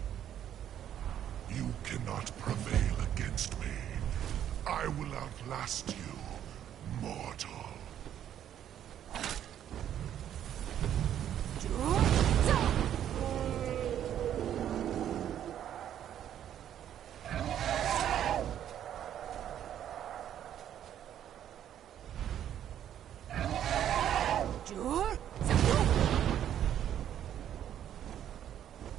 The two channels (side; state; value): left; quieter; 10.4 dB